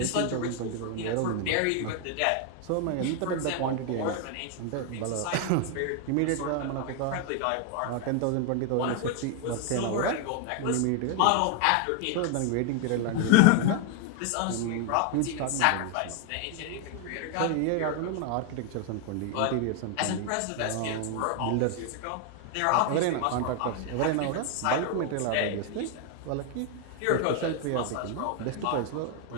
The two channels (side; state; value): both; different; correlation 0.01